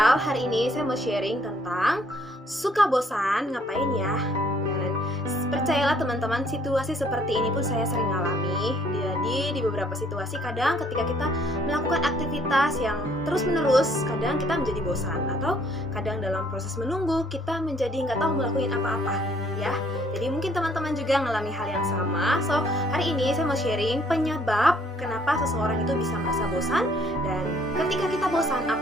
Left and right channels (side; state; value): both; normal; correlation 0.64